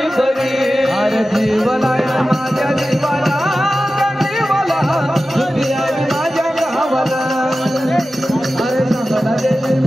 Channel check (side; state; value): both; normal; correlation 0.94